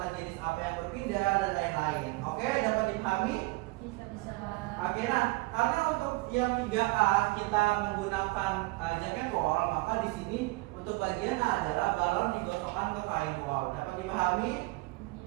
jenis apa yang berpindah dan lain-lain. Oke, dapat dipahami? Bisa. Oke, nah karena untuk yang 3A kita menggunakan jaket wall, maka di sini untuk bagian A adalah balon digosokkan ke kain wall. Dapat dipahami?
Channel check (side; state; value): left; quieter; 23.7 dB